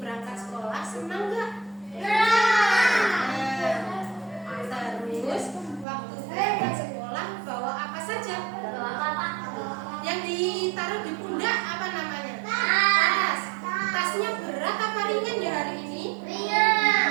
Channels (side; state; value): left; drops out; at 5.9 s